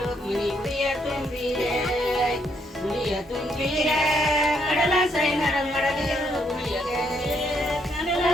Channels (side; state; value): both; normal; correlation 0.74